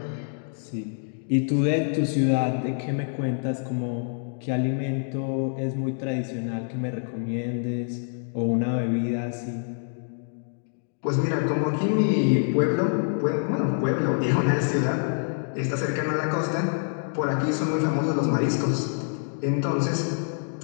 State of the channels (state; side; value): silent; right; digital silence